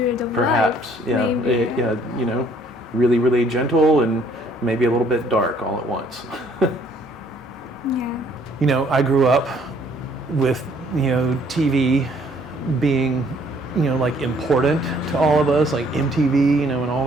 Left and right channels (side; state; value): both; normal; correlation 0.62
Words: of Perhaps, life. yeah, yeah. You know, really, really gentle and maybe a little bit dark all at once. Yeah. You know, I grew up with, you know, TV being, like important to all of us, like MTV, and all